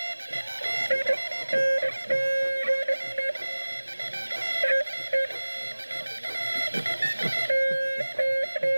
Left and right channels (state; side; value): inverted; both; correlation -1.00